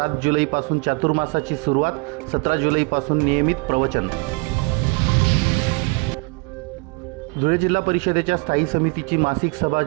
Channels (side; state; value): left; quieter; 28.5 dB